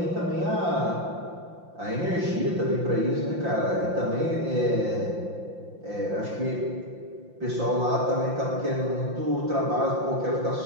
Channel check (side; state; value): left; late; 5.8 ms